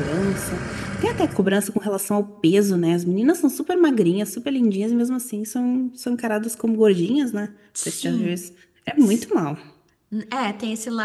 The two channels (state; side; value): identical; both; correlation 1.00